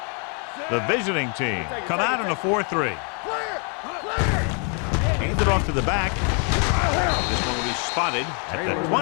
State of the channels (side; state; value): right; quieter; 38.2 dB